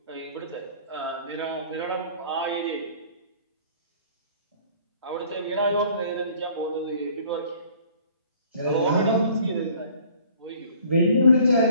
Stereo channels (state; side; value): inverted; both; correlation -0.53